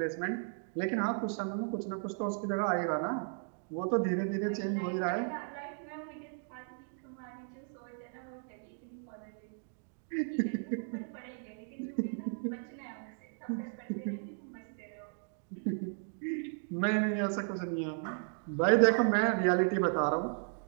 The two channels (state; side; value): silent; left; 54 dB below the other